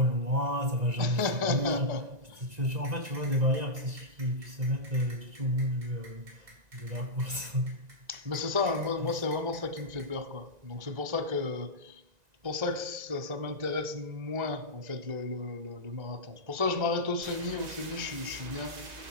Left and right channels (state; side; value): late; left; 1.9 ms